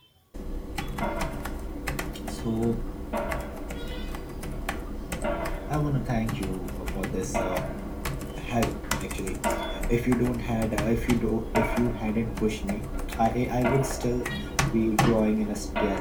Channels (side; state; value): both; identical; correlation 1.00